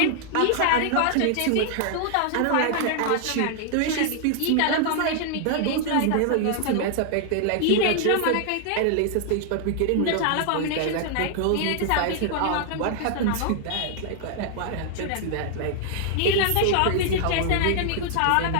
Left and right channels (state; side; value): different; both; correlation -0.01